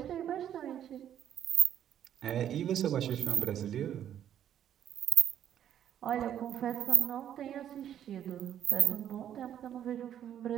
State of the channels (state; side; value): quieter; left; 10.3 dB